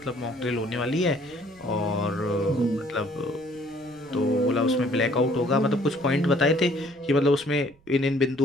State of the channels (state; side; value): noise; right; rumble, 30 dB below the sound